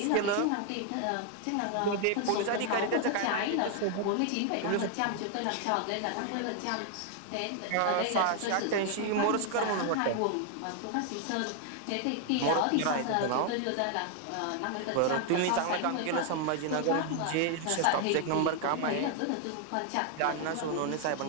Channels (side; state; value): both; different; correlation 0.00